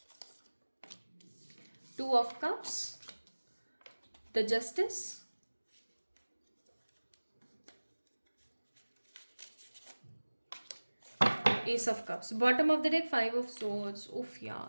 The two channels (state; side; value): inverted; both; correlation -1.00